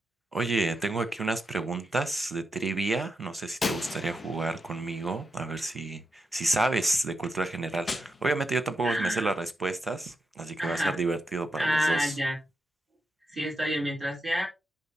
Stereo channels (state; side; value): normal; both; correlation 0.86